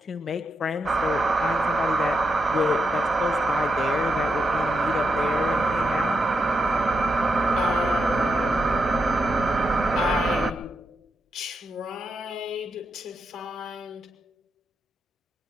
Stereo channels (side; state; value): both; normal; correlation 0.84